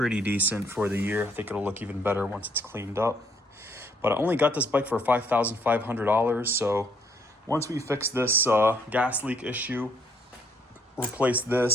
decent for the year. I think it'll look even better once it's cleaned up. But I only got this bike for $5,500, so once we fix this gas leak issue, replace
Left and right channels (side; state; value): both; normal; correlation 0.68